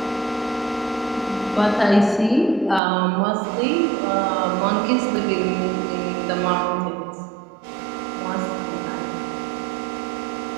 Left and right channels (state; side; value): drops out; left; at 2.8 s